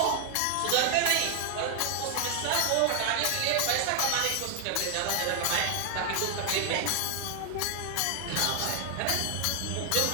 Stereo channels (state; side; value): different; both; correlation 0.00